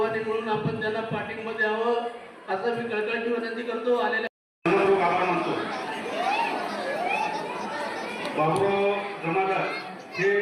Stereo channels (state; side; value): identical; both; correlation 1.00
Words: म्हणून आपण त्यांना पाठिंबा द्यावं असं मी कळकळीची विनंती करतो। बाबूराव जमादार हे